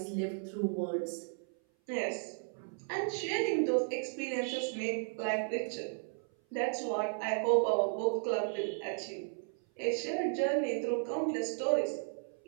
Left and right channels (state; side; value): silent; left; 55 dB below the other